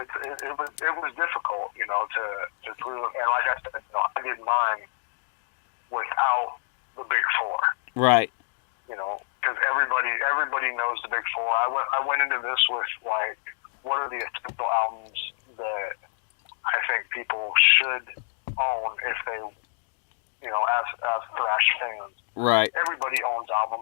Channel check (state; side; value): silent; right; digital silence